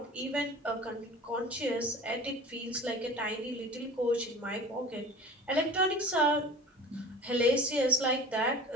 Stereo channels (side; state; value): both; normal; correlation 0.39